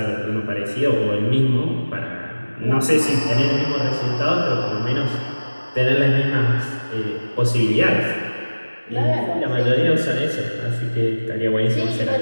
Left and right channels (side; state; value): both; inverted; correlation -1.00